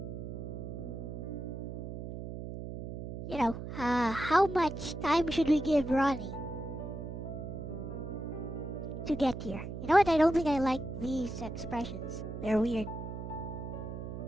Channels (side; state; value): right; noise; hum, 7 dB below the sound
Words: How much time should we give Ronnie to get here? You know what? I don't think I like these expressions. They're weird.